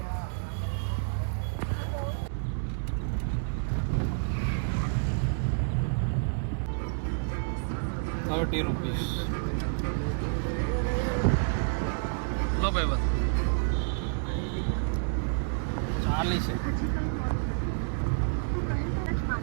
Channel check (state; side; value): silent; left; digital silence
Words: 30 રૂપીસ લો ભાઈ બસ 40 છે